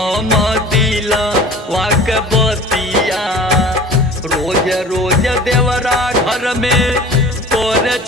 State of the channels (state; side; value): normal; both; correlation 0.42